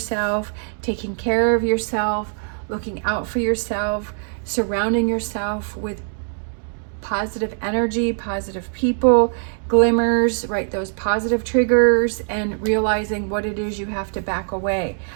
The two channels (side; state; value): left; silent; digital silence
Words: taking care of yourself, looking out for yourself, surrounding yourself with positive energy, positive people, glimmers, right? Those positive triggers, and realizing what it is you have to back away.